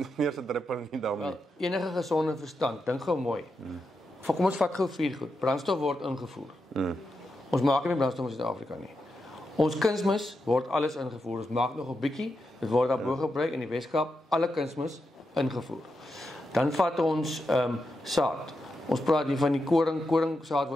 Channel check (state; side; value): normal; both; correlation 0.86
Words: eerste druppel in die dam nie? Enige gesonde verstand, dink gou mooi. Kom ons vat gou 4 goed. Brandstof word ingevoer. Ons maak nie brandstof in Suid-Afrika nie. Ons kunsmis word alles ingevoer. Ons maak nog 'n bietjie. Dit word daarbo gebruik in die Weskaap, alle kunsmis ingevoer. Dan vat ons saad. Ons praat hier van die koringsaad